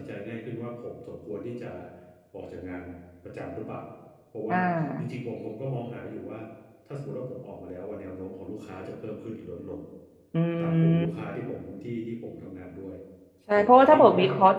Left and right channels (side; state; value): both; identical; correlation 1.00